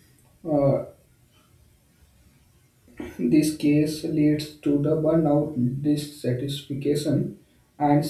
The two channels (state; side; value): identical; both; correlation 1.00